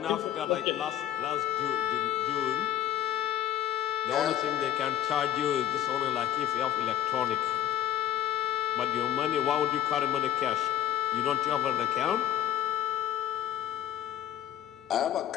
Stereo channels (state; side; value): quieter; right; 11.6 dB